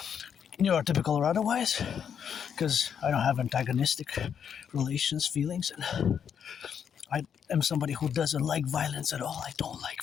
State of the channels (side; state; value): right; quieter; 7.9 dB